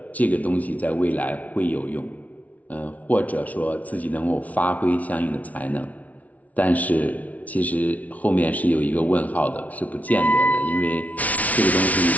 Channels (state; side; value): late; right; 0.070 ms